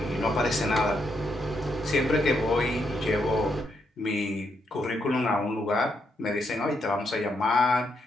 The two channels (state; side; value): normal; both; correlation 0.79